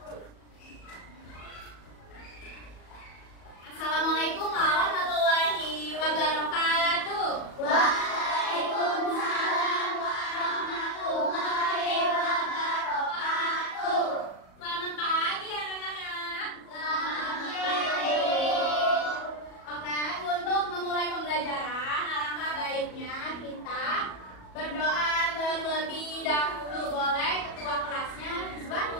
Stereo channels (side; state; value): right; late; 37 ms